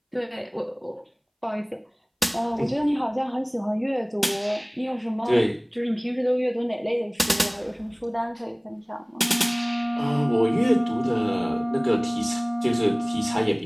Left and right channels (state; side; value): identical; both; correlation 1.00